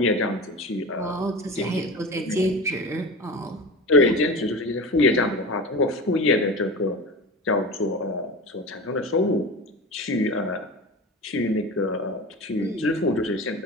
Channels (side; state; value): both; normal; correlation 0.30